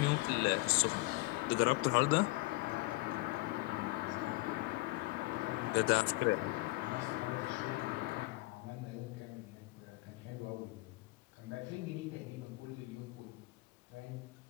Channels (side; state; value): right; quieter; 22.4 dB